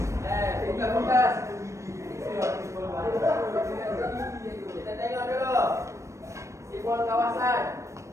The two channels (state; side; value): late; left; 0.15 ms